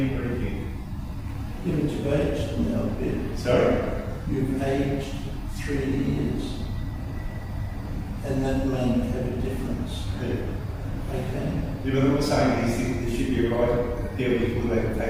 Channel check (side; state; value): both; identical; correlation 1.00